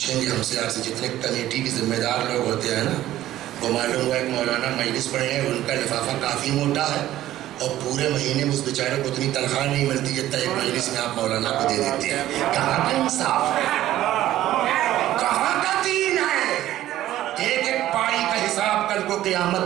گے ہم سے. آپ سے جتنے کمیٹی کے ذمہ دار لوگ ہوتے ہیں نا، وہ معلوم ہوا ایک مولانا مجلس پڑھے ہیں، ان کا لفافہ کافی موٹا ہے اور پورے مہینے میں اس بیچارے کو اتنی تنخواہ نہیں ملتی جتنا ایک مجلس میں آپ مولانا کو دے دیتے ہیں. کہاں کا انصاف ہے، کہاں کا دین ہے؟ ایک ایک پائی کا حساب کل کو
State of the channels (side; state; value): left; quieter; 13.8 dB